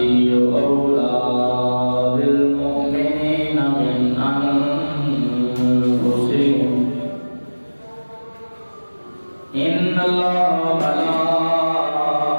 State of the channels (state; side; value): inverted; both; correlation -1.00